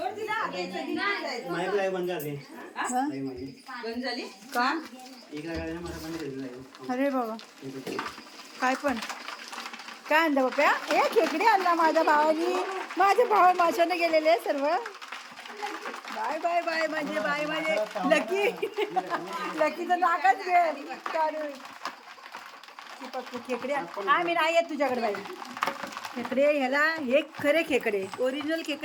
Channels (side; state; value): both; identical; correlation 1.00